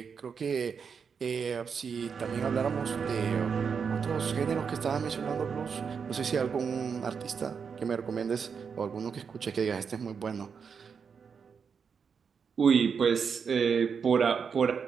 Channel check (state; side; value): quieter; left; 6.3 dB